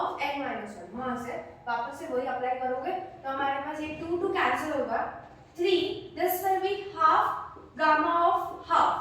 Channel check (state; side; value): identical; both; correlation 1.00